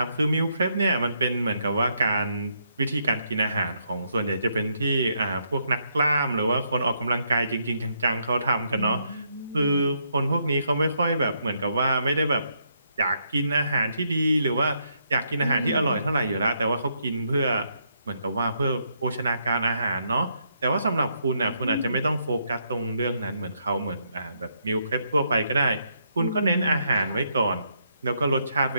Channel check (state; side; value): inverted; both; correlation -0.75